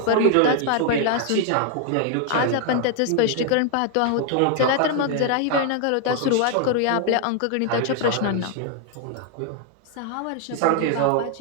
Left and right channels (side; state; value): both; different; correlation 0.01